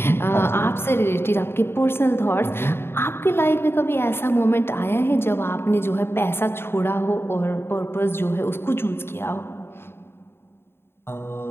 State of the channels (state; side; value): late; right; 0.11 ms